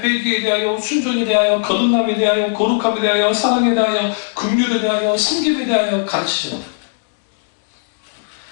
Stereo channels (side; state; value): right; silent; digital silence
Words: 대하여, 순종에 대하여, 거듭남에 대하여, 거룩함에 대하여, 사랑에 대하여, 긍휼에 대하여, 섬김에 대하여 가르치셨다.